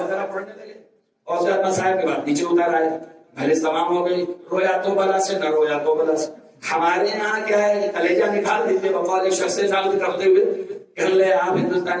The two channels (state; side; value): identical; both; correlation 1.00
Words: وغیرہ پڑھنے لگے، اور اس کے بعد مسائل کے بعد نیچے اتر آئے، مجلس تمام ہو گئی. رویا تو بلا سے نہ رویا تو بلا سے. ہمارے یہاں کیا ہے کہ کلیجہ نکال دیتے بقول شخص ثابت کرتے ہوئے کہ لے آپ